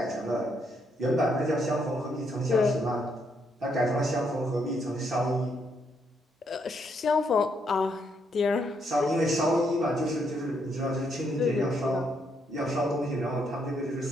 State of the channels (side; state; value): both; normal; correlation 0.75